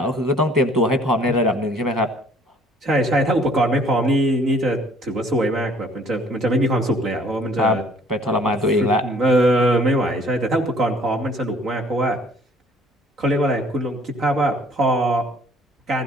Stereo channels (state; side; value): normal; both; correlation 0.57